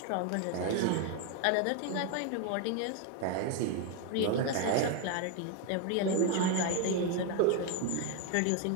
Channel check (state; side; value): different; both; correlation 0.01